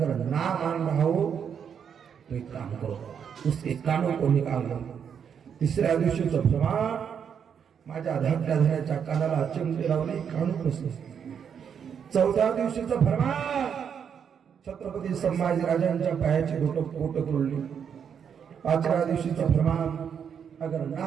ना मान रहा हो तो एक काम करो, उसके कानों को निकाल लो. तिसऱ्या दिवशीचं प्रमाण, माझ्या धाकट्या धन्याच्या कानाला चिमटे लावले, कान कसले. चौथ्या दिवशीचं फरमान, छत्रपती संभाजी राजांच्या पायाची बोटं तोडली. पाचव्या दिवशीचं फरमान, अगर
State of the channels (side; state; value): left; quieter; 7.6 dB